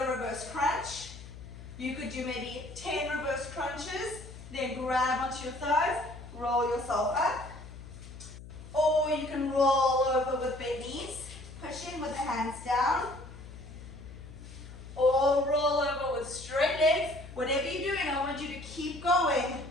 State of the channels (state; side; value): noise; left; hum, 14 dB below the sound